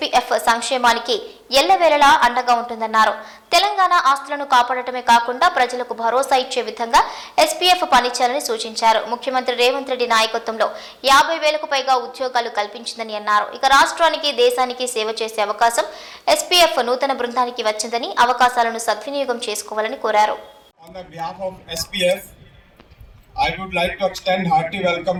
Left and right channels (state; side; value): identical; both; correlation 1.00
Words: సంక్షేమానికి ఎల్లవేళలా అండగా ఉంటుందన్నారు. తెలంగాణ ఆస్తులను కాపాడటమే కాకుండా ప్రజలకు భరోసా ఇచ్చే విధంగా ఎస్పీఎఫ్ పనిచేయాలని సూచించారు. ముఖ్యమంత్రి రేవంత్ రెడ్డి నాయకత్వంలో 50,000కు పైగా ఉద్యోగాలు కల్పించిందని అన్నారు. ఇక రాష్ట్రానికి దేశానికి సేవ చేసే అవకాశం ఎస్పీఎఫ్ నూతన బృందానికి వచ్చిందని అవకాశాలను సద్వినియోగం చేసుకోవాలని కోరారు. I would like to extend hearty welcome